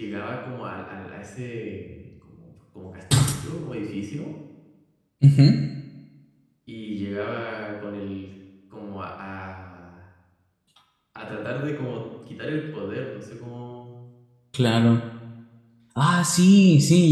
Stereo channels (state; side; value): identical; both; correlation 1.00